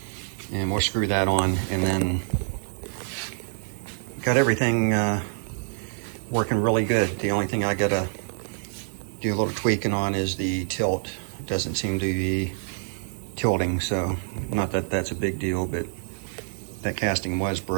And we'll screw that on, and then got everything working really good. The only thing I gotta do a little tweaking on is the tilt. It doesn't seem to be tilting, so not that that's a big deal, but that casting was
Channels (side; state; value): left; silent; digital silence